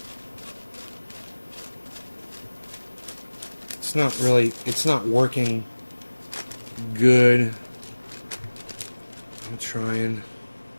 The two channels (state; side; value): inverted; both; correlation -1.00